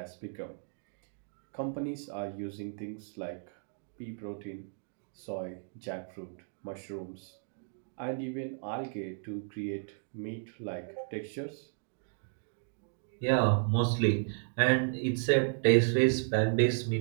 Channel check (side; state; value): left; silent; digital silence